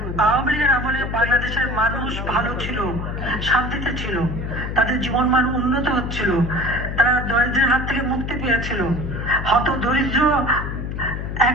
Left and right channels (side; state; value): left; noise; hum, 5 dB below the sound